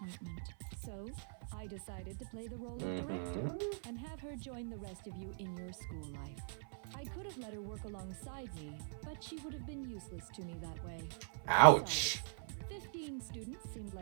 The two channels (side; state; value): left; silent; 50 dB below the other